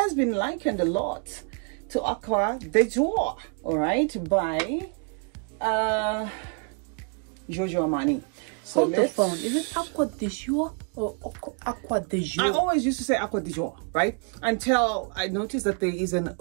been likened a lot to Aqua de Jour, all right, by Giorgio Armani. So hold the phone. Is it Aqua de Jour or Aqua de Jour? I always used to say Aqua de Jour, right? Until I noticed that there is an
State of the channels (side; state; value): left; quieter; 38.2 dB